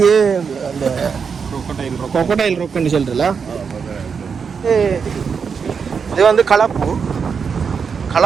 அந்த கொக்கடைல் ரொக்குன்னு சொல்றல. இது வந்து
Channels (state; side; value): quieter; left; 6.1 dB